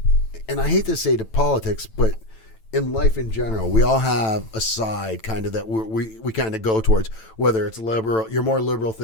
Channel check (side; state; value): right; late; 9.0 ms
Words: and I hate to say to politics, but in life in general, we all have a side kind of that we kind of go towards, whether it's liberal, you're more liberal